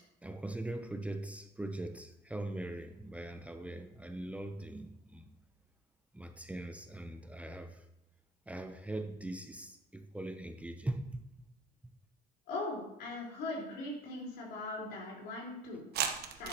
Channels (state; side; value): normal; both; correlation 0.56